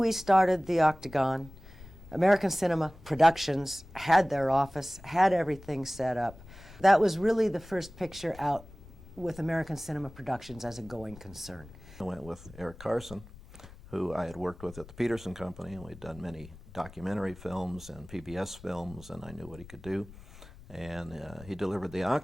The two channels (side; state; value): left; noise; rumble, 19 dB below the sound